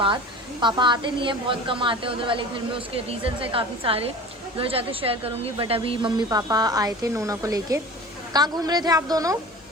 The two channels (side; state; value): both; normal; correlation 0.38